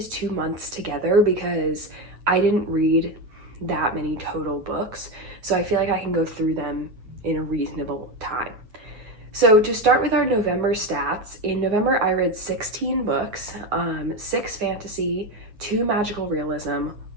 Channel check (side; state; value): left; late; 9.6 ms